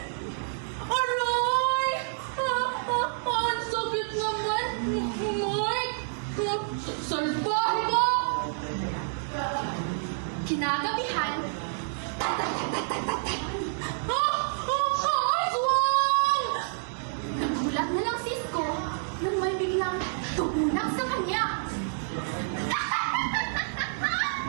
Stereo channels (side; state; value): left; silent; digital silence